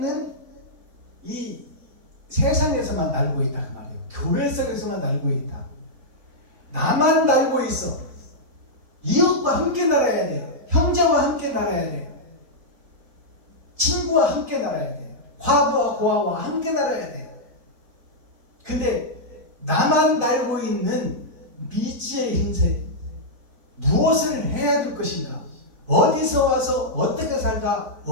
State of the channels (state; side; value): late; left; 4.0 ms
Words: 이 세상에서만 날고 있다 그 말이에요. 교회 속에서만 날고 있다. 나만 날고 있어. 이웃과 함께 날아야 돼. 형제와 함께 날아야 돼. 친구와 함께 날아야 돼. 과부와 고아와 함께 날아야 돼. 근데 나만 날고 있는 미지의 흰색, 무엇을 해야 될 것인가, 어디서 와서 어떻게 살다